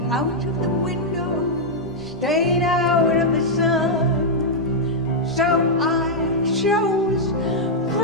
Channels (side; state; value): both; normal; correlation -0.05